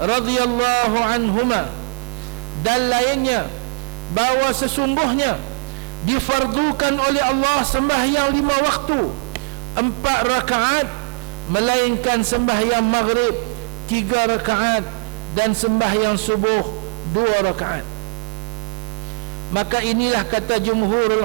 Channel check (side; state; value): left; quieter; 33.7 dB